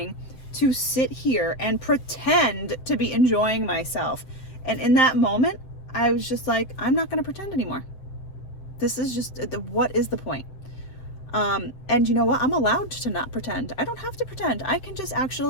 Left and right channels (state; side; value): late; right; 7.8 ms